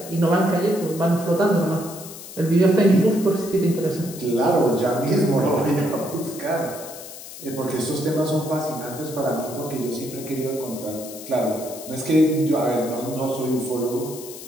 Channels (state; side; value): noise; left; hiss, 14 dB below the sound